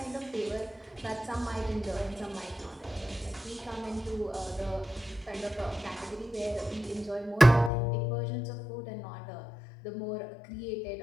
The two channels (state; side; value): drops out; right; at 7.7 s